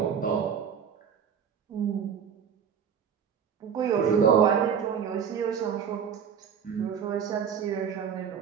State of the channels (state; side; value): quieter; left; 7.5 dB